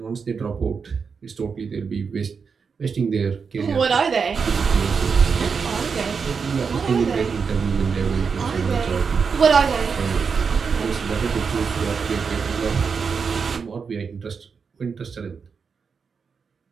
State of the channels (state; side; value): quieter; left; 5.7 dB